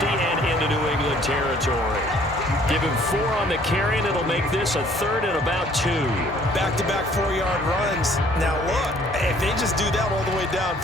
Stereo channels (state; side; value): normal; both; correlation 0.58